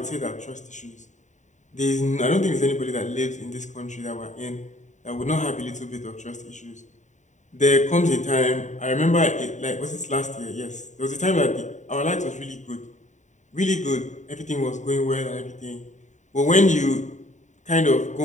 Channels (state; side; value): late; right; 0.35 ms